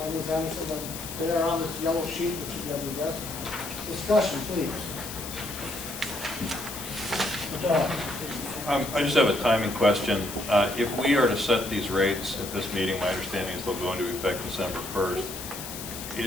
Ms. Anderson, they are on this yellow sheet that you got your desk. Discussion, please. I just have a timing question. If we are to set these rates at this meeting, my understanding is they'll go into effect December 1st.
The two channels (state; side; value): noise; left; hiss, 9 dB below the sound